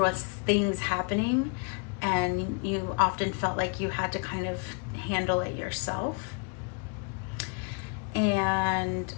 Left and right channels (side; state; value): right; quieter; 38.7 dB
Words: things happening, and you often felt like you had to kind of handle it yourself. And